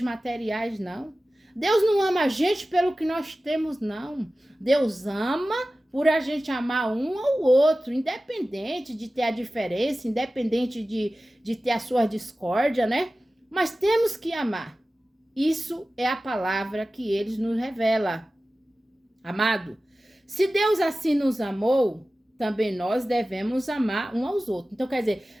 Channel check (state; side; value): normal; both; correlation 0.96